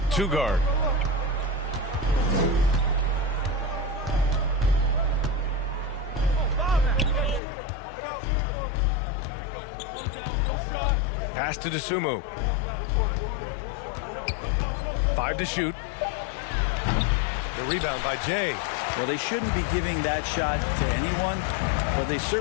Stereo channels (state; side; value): drops out; right; at 7.4 s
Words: 2 guard. Pass to Dosunmu. 5 to shoot. The rebound by Jay. Well, they shouldn't be giving that shot to anyone, but they